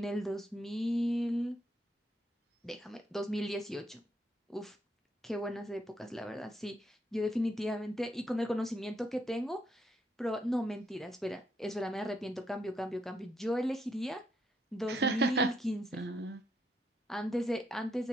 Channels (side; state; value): both; normal; correlation 0.76